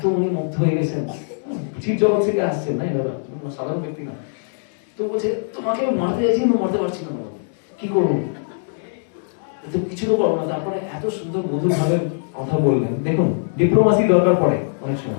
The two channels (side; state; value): right; silent; digital silence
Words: উনি মুগ্ধ হয়ে গেছেন, চির জগৎ থেকে আসছেন, না দাদা, সাধারণ ব্যক্তি না। তো বলছে তোমাকে মারতে যাচ্ছি কিন্তু মারতে পারছি না, কি করবো? তো কিছু তো করবো না। তারপরে এত সুন্দর মধুর ভাবে কথা বললেন। দেখুন, ডিপ্লোমাসি দরকার পড়ে অনেক